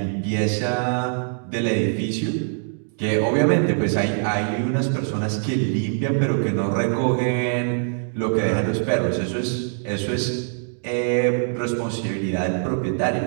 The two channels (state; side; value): silent; left; digital silence